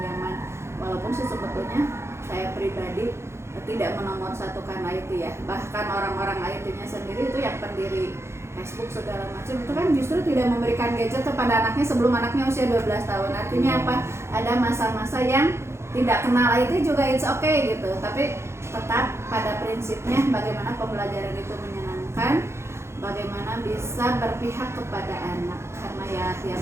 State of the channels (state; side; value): late; left; 0.13 ms